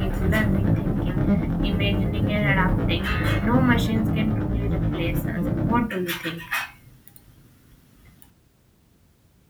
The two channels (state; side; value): identical; both; correlation 1.00